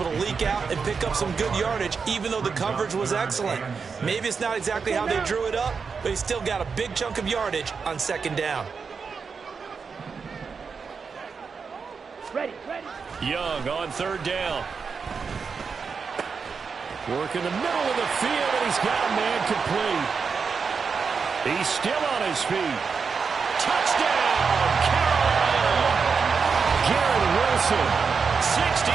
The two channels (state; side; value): quieter; left; 5.5 dB